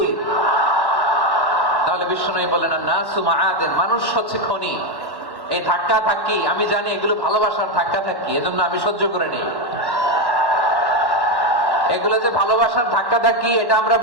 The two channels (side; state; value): right; late; 1.1 ms